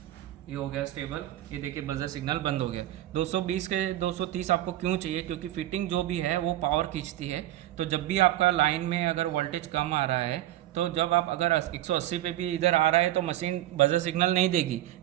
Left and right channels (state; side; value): quieter; left; 14.1 dB